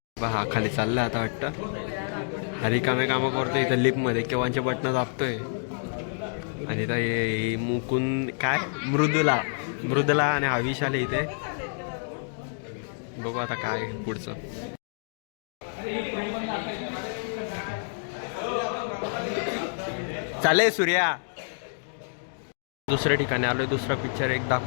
हा खाली चाललाय आता वाटतं. हा रिकामे कामं करतोय इथं लिफ्टमध्ये. केव्हाचे बटणं दाबतोय. आणि इथं हे मुकुंद काय मृदुला आणि हा विशाल इथे. बघू आता काय पुढचं. चालेल सूर्या. दुसऱ्या ठिकाणी आलोय. दुसरा पिक्चर एक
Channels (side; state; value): right; silent; 59 dB below the other